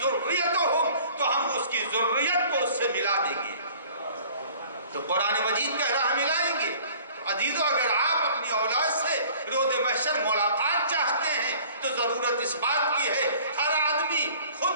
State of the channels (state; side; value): inverted; both; correlation -0.50